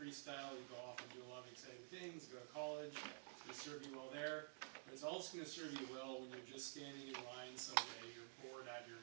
you go off and do a lot of exciting things, go to college, it's gonna serve you well there, but it's also gonna serve you well when you're just standing in line someday, you're bored out of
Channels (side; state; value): left; silent; digital silence